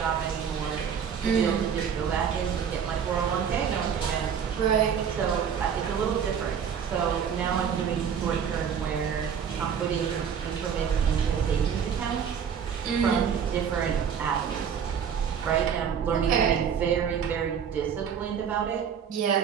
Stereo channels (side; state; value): left; quieter; 7.6 dB